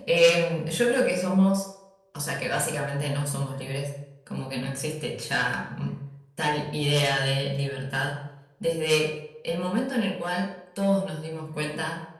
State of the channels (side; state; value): both; identical; correlation 1.00